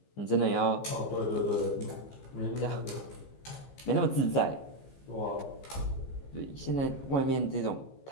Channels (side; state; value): right; late; 14 ms